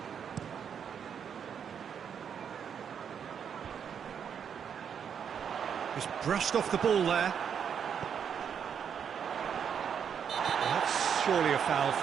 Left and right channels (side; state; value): left; quieter; 7.7 dB